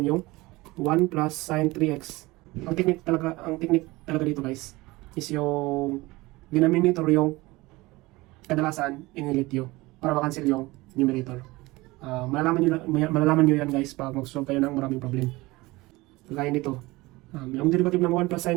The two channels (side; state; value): left; quieter; 21.1 dB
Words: yung 1 plus sin 3x. Ang technique talaga dito guys, is yung denominator yung kadalasan in-let you para makancel yung numerator. Malalaman nyo yan guys pag mag-solve kayo ng maraming problem. Kagaya nito, yung derivative ng 1 plus